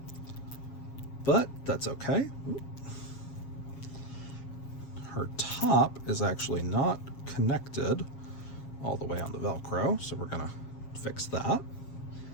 but that's okay. Her top is actually not connected all the way on the Velcro, so we're gonna fix that.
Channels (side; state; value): right; late; 7.3 ms